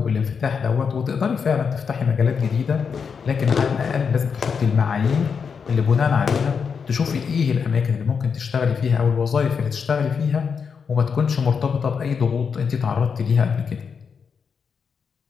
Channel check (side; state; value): right; quieter; 6.1 dB